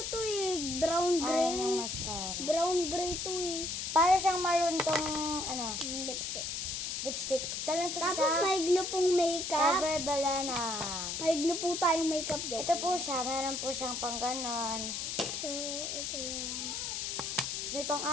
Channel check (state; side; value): noise; left; hiss, 3 dB below the sound